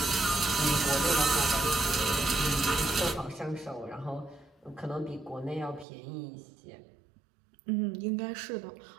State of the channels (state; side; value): drops out; left; at 5.9 s